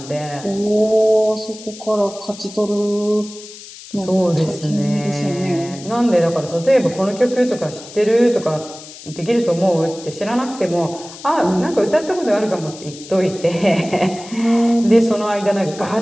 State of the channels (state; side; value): noise; left; hiss, 16 dB below the sound